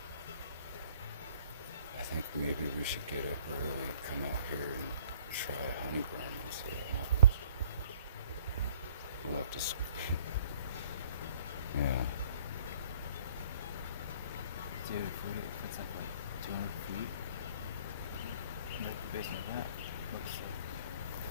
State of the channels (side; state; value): both; inverted; correlation -0.55